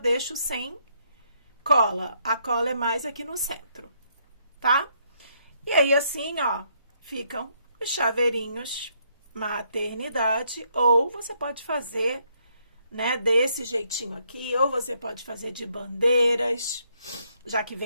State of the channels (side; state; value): both; inverted; correlation -0.72